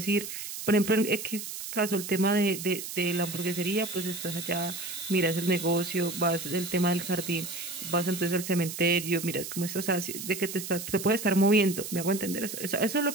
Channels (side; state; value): right; noise; hiss, 8 dB below the sound